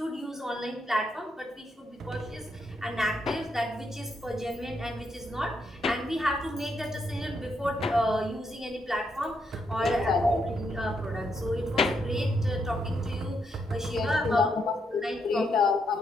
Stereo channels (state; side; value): normal; both; correlation 0.78